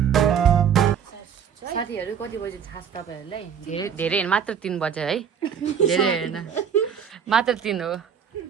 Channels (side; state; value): left; quieter; 7.8 dB